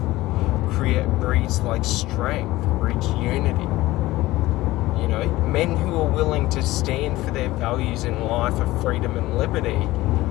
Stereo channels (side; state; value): right; quieter; 17.9 dB